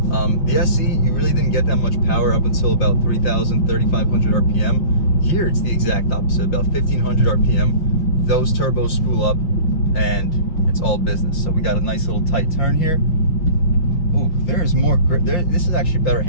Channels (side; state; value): right; late; 5.7 ms